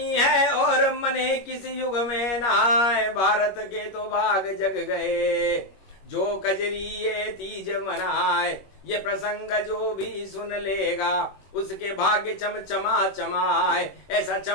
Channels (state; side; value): late; right; 21 ms